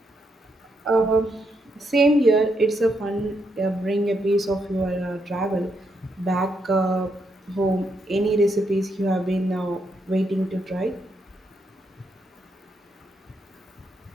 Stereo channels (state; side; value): normal; both; correlation 0.79